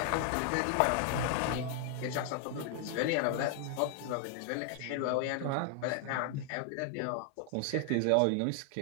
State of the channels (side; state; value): both; different; correlation 0.00